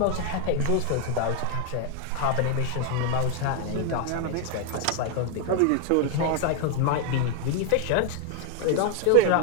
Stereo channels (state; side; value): different; both; correlation 0.01